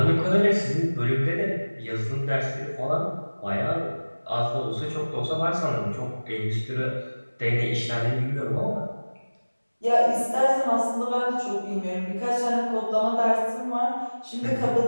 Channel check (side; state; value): both; inverted; correlation -1.00